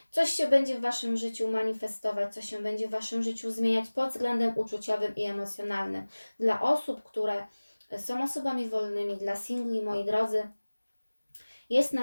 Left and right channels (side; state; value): both; inverted; correlation -1.00